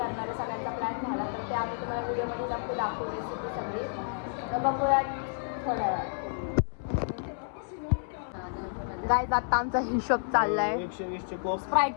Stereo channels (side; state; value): right; silent; 58 dB below the other